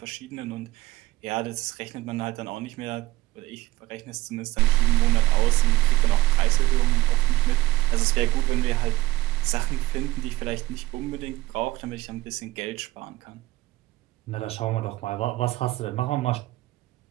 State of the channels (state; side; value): quieter; left; 17.9 dB